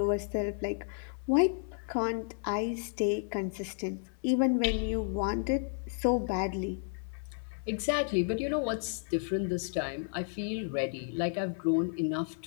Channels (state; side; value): silent; right; 56 dB below the other